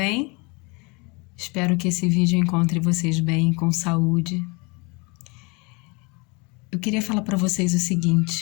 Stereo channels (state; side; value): quieter; right; 29.1 dB